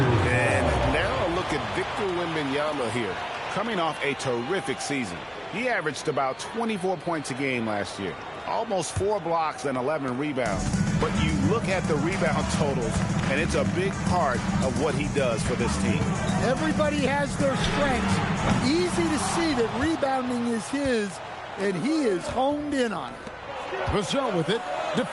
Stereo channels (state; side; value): identical; both; correlation 1.00